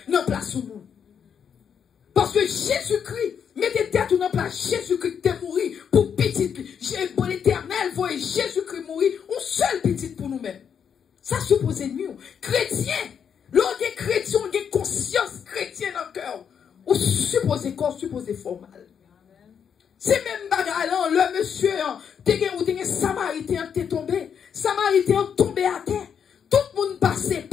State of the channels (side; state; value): right; quieter; 7.5 dB